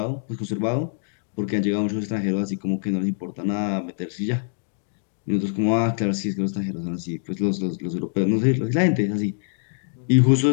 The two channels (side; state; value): right; silent; digital silence